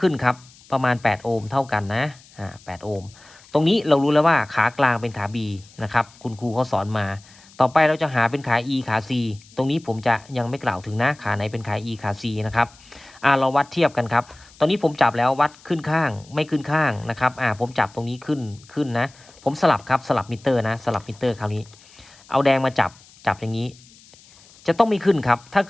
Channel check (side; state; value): left; noise; hiss, 25 dB below the sound